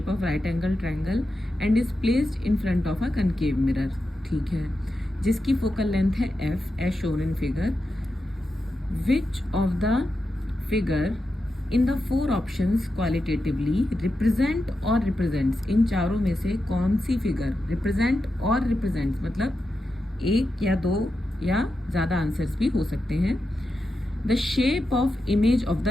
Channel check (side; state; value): both; normal; correlation 0.89